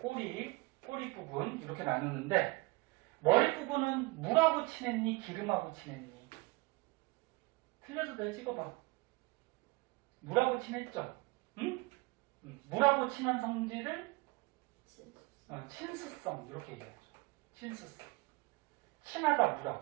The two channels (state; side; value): quieter; left; 23.8 dB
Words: 꼬리 부분 이렇게 나누는데, 머리 부분은 물하고 친했니? 기름하고 친했니? 틀려도 돼, 찍어봐. 물하고 친했죠? 응? 물하고 친한 성질을 친수성 이렇게 얘기하죠. 친수성. 친하다